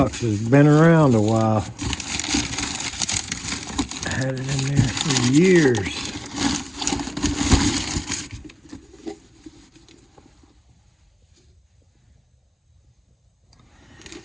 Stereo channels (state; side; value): identical; both; correlation 1.00